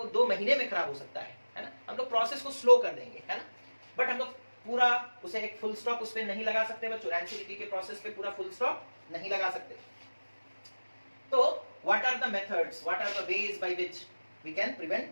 2 महीने में खराब हो सकता है ना? हम लोग प्रोसेस को स्लो कर देंगे, है ना? बट हम लोग पूरा उसे एक फुल स्टॉप उस पे नहीं लगा सकते बच्चों, रैंसिडिटी के प्रोसेस पे पूरा फुल स्टॉप नहीं लगा सकते। तो what are the methods, what are the ways by which we can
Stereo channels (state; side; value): inverted; both; correlation -1.00